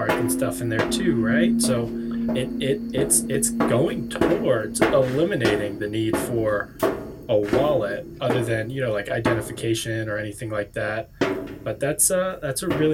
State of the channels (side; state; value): both; identical; correlation 1.00